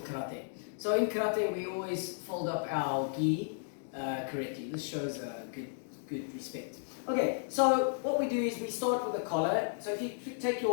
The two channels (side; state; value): right; silent; digital silence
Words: karate. So in karate we always fold up our gi correctly. This shows good respect. Okay, so what we do is we start with the collar. So if you take